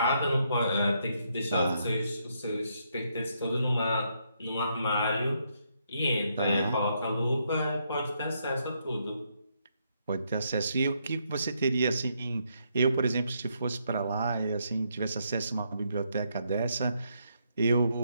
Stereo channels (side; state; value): both; inverted; correlation -0.76